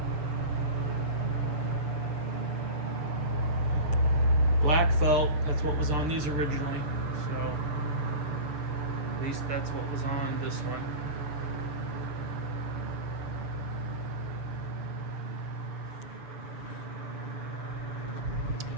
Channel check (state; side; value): late; left; 6.9 ms